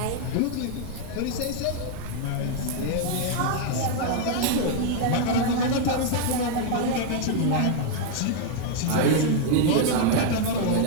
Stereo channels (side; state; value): both; different; correlation 0.00